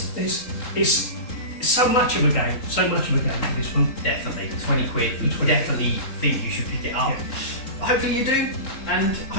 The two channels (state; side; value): late; right; 3.9 ms